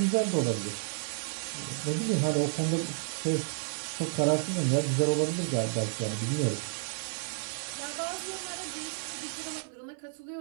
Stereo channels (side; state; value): left; silent; 55 dB below the other